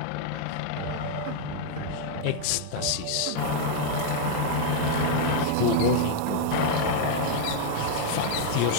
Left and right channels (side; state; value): both; different; correlation 0.00